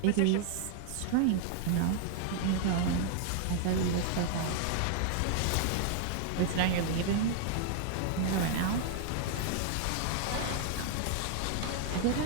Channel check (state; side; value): different; both; correlation 0.00